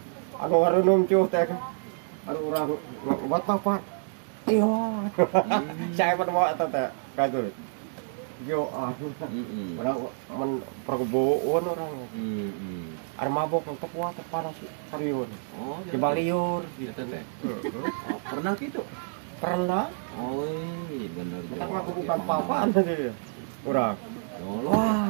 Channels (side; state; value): left; silent; digital silence